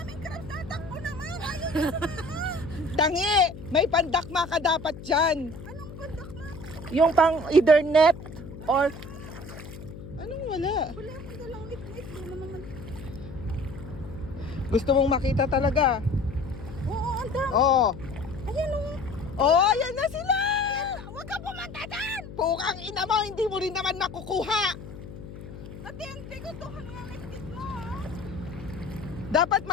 crabs, tatakbo naman. Ayaw Tangi! May pandakma ka dapat dyan. Anong bandak na? Yung pang either net or... Anong wala? Wala akong dalang ngit-ngit. Doon naman. Gusto mong makita talaga? Oo, ang dami. Oo. Ayan o. Oh, yan na sila! Huwag ka pumunta dyan. Pukang ina mo, hindi mo rin naman makukuha. Ate, hindi ko to ang ngit-ngit mo. Dapat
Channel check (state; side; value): noise; left; hum, 13 dB below the sound